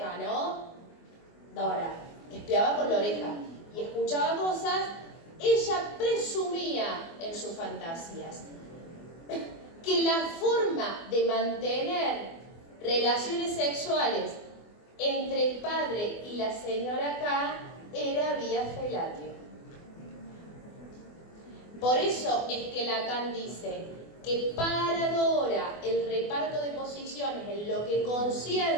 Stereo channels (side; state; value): right; late; 24 ms